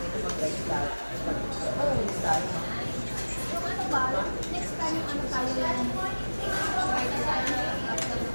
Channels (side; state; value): both; inverted; correlation -1.00